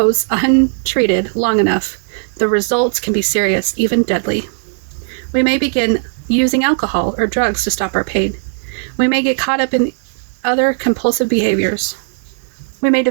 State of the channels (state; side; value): silent; left; digital silence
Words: untreated long enough, the results can be serious, even deadly. We may begin using alcohol or drugs to stop our pain. We may get caught up in other compulsive behaviors. We may